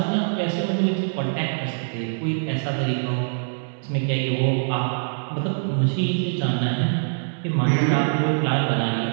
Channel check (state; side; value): silent; left; 63 dB below the other